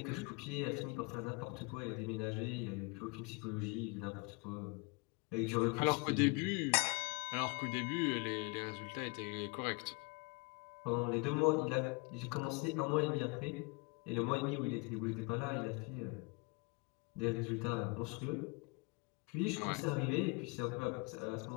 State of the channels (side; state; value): right; quieter; 28.5 dB